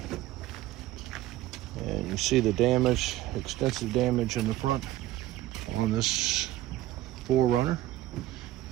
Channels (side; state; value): left; quieter; 15.1 dB